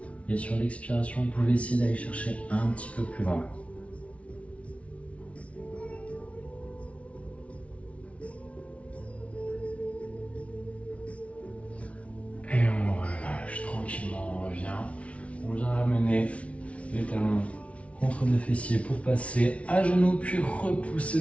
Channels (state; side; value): late; right; 0.063 ms